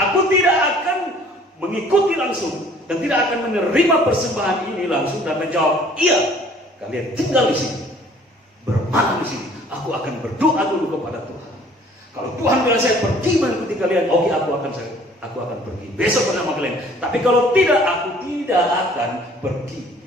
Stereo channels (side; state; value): both; normal; correlation 0.54